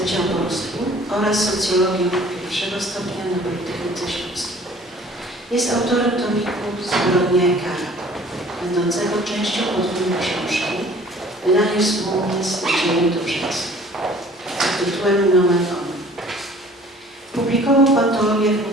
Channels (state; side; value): normal; both; correlation 0.51